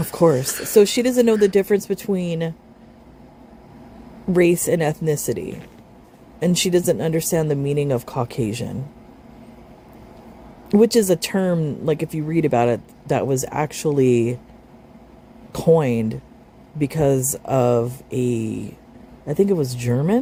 course. So she doesn't know the difference between race and ethnicity. And she doesn't understand the meaning of Caucasian. Which is a term, like if you read about it, that was actually coined because of I think it was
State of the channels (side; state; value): both; identical; correlation 1.00